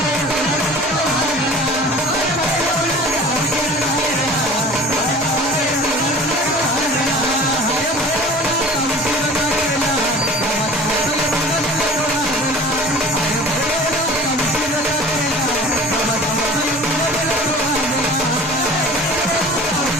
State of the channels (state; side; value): normal; both; correlation 0.43